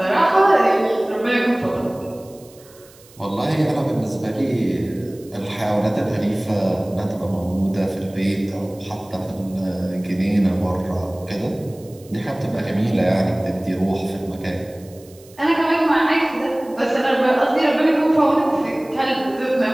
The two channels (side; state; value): right; noise; hiss, 25 dB below the sound